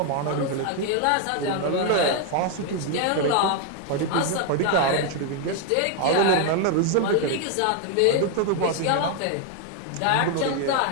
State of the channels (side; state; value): both; different; correlation 0.01